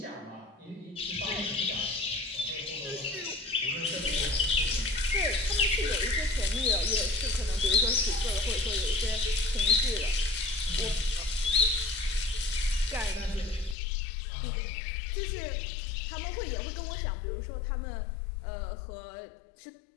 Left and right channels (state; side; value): drops out; right; at 13.8 s